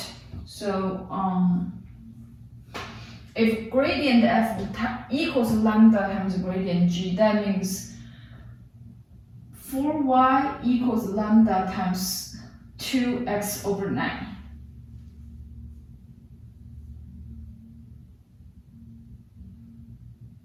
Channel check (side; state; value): both; identical; correlation 1.00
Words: So if gradient f equals lambda times gradient g, that means 4y equals lambda times 2x over 9.